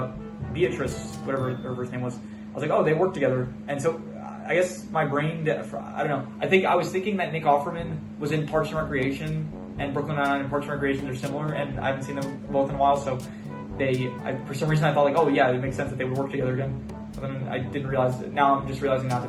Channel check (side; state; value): both; identical; correlation 1.00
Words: Beatrice, whatever her first name was, I was like, oh, they work together, and so, I guess my brain, I don't know, I was thinking that Nick Offerman was in Parks and Recreation, and Brooklyn Nine-Nine and Parks and Recreation, they're similar, and I haven't seen them both in a while, so for some reason I thought like, oh yeah, it makes sense that they would work together again. But then I didn't realize that, now I'm just realizing now